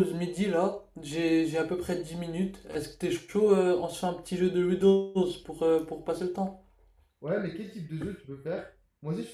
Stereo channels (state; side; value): identical; both; correlation 1.00